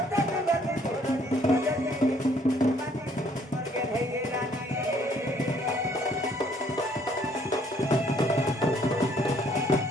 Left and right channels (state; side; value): normal; both; correlation 0.64